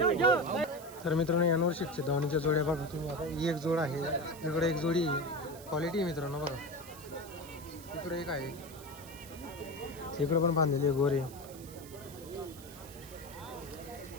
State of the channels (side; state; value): right; noise; hiss, 18 dB below the sound